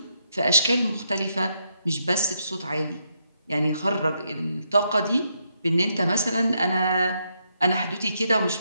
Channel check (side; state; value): both; inverted; correlation -0.79